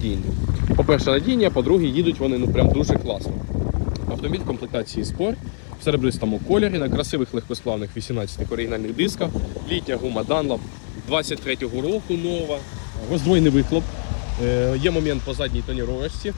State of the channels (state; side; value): silent; right; digital silence